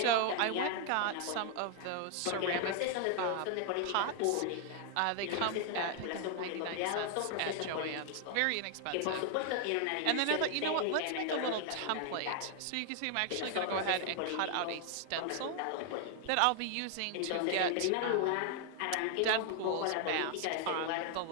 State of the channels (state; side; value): different; both; correlation 0.00